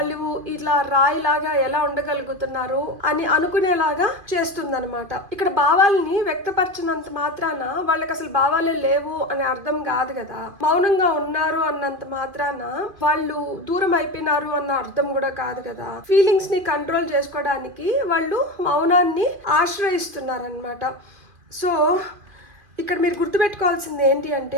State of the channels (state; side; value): late; left; 2.5 ms